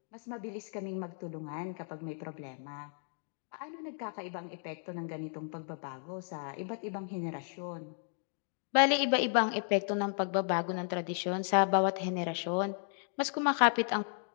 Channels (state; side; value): silent; right; 55 dB below the other